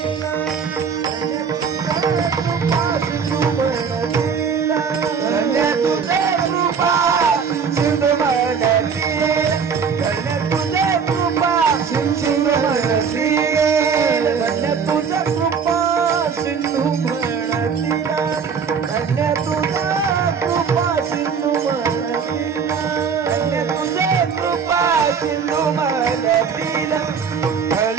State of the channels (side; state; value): left; quieter; 6.2 dB